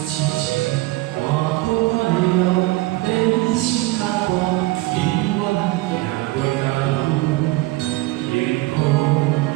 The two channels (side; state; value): left; quieter; 19.7 dB